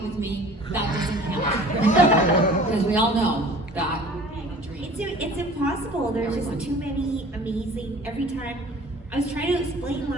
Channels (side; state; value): both; normal; correlation 0.46